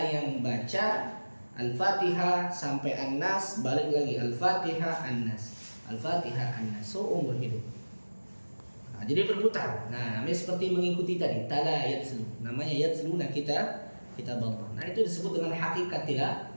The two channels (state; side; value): inverted; both; correlation -1.00